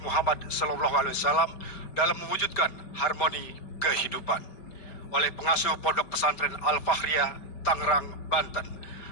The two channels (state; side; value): late; right; 5.1 ms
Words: Muhammad SAW dalam mewujudkan harmoni kehidupan oleh pengasuh Pondok Pesantren Al-Fakhriyah, Tangerang, Banten,